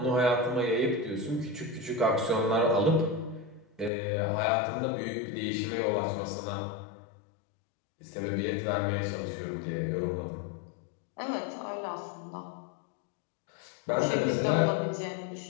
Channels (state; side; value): drops out; right; at 3.9 s